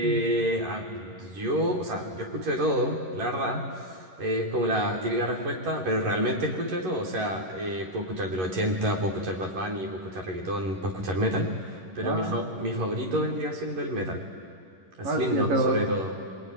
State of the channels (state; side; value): late; left; 11 ms